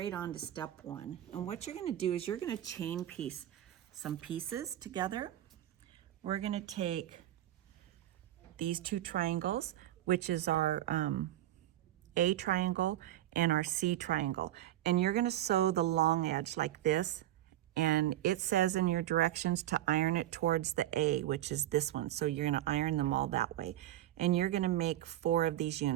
on to step 1, and what you're going to do is you're going to chain piece some pieces together. We're going to take these two triangles, which is our A triangle and our C triangle, and you're going to sew the long edge like this, and it says in your directions to iron it towards the A, which is this one. So you're going to iron them all that way, and you're going to make 4 of these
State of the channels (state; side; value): quieter; left; 13.3 dB